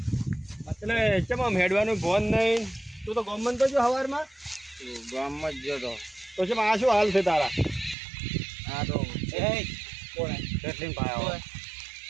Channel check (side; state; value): left; drops out; at 8.0 s